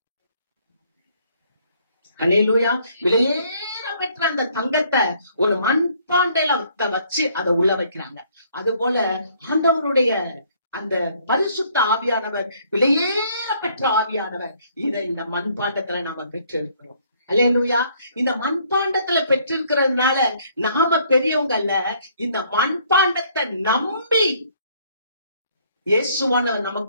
அல்லேலூயா. விலையேற பெற்ற அந்த தங்கத்தை ஒரு மண்பாண்டையில வச்சு அதை உள்ள வைக்கிறாங்க. அது போல ஆண்டவருடைய அந்த பரிசுத்த ஆவியானவர், விலையேற பெற்ற ஆவியானவர், இதை இந்த மண்பாண்டத்துல நாம பெற்றிருக்கிறோம். அல்லேலூயா. இந்த மண்பாண்டத்துல பெற்றிருக்கிறதுனால நாம பெரியவங்க அல்ல, இந்த மண்பாண்டத்தை நம்பி இயேசுவானவர்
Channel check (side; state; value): both; inverted; correlation -0.64